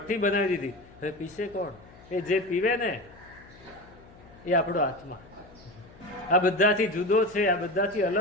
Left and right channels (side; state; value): left; noise; hum, 23 dB below the sound